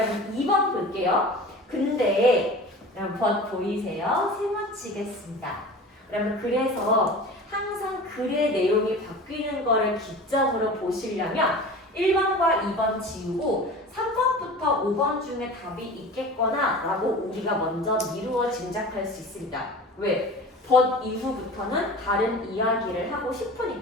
2번 볼게요. 근데 여러분 보이세요? 세워치겠습니다. 여러분 그래서 항상 글의 내용이 바뀌는 거를 기점으로 보시려면 1번과 2번 지우고 3번부터 5번 중에 답이 있겠거나 라고 우리가 먼저 미루어 짐작할 수 있습니다. 왜? but 이후부터는 다른 이야기를 하고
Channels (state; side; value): normal; both; correlation 0.37